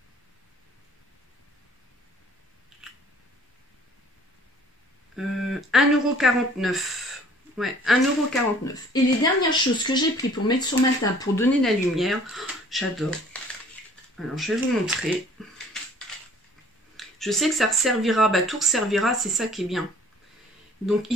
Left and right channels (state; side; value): normal; both; correlation 0.53